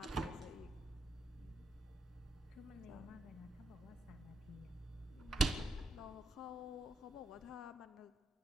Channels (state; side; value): normal; both; correlation 0.81